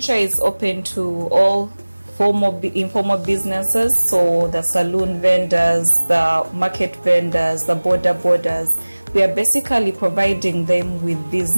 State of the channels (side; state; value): both; inverted; correlation -1.00